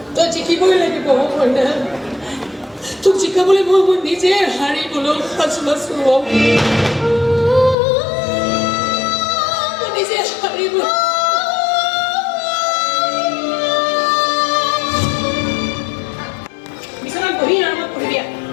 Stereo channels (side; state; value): right; drops out; at 7.8 s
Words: তই জিকিবই লাগিব মইনা তোক জিকাবলৈ মই নিজে হাৰিবলৈ সাজু আছোঁ মই নিজে হাৰিব Beri nama aku dia.